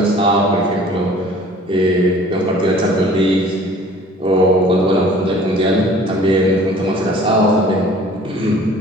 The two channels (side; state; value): both; normal; correlation 0.50